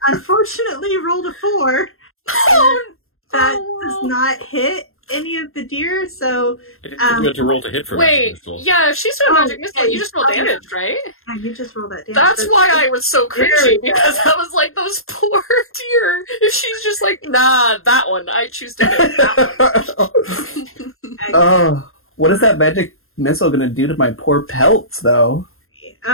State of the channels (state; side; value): late; right; 0.61 ms